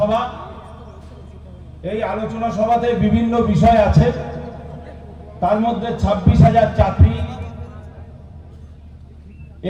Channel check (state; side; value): identical; both; correlation 1.00